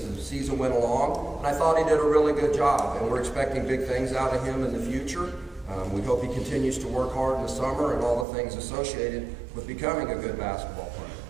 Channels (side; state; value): left; drops out; at 8.2 s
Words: the season went along, and I thought he did a really good job, and we're expecting big things out of him in the future. We hope he continues to work hard in the summer and all the things associated with becoming a good basketball player.